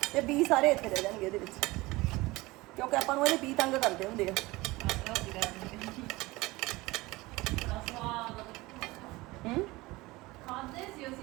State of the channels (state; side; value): quieter; left; 21.0 dB